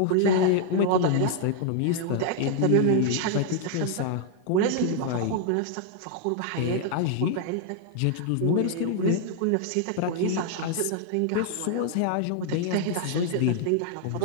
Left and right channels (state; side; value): different; both; correlation 0.00